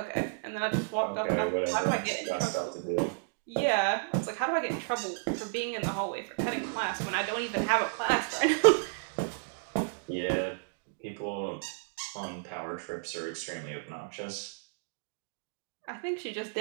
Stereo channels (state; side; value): silent; left; digital silence